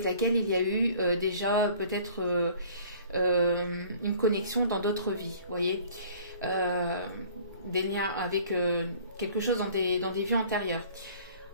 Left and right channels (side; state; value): both; inverted; correlation -0.50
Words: laquelle il y a eu déjà peut-être une connexion dans d'autres vies, vous voyez, des liens avec quelque chose dans des vies antérieures.